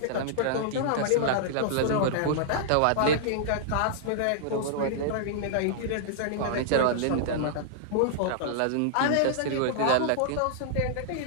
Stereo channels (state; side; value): different; both; correlation -0.01